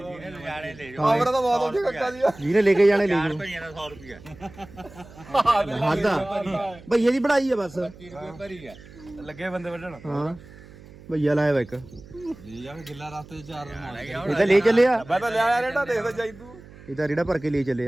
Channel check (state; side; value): noise; right; hum, 20 dB below the sound